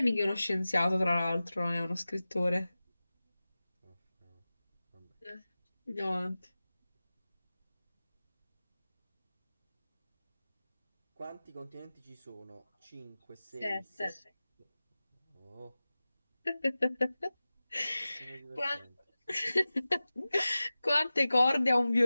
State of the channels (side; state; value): both; inverted; correlation -0.97